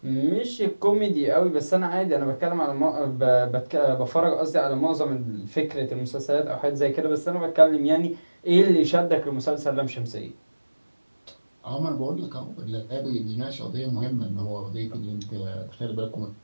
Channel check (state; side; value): inverted; both; correlation -1.00